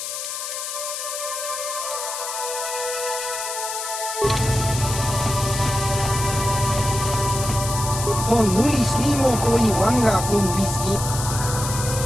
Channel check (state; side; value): noise; left; hiss, 5 dB below the sound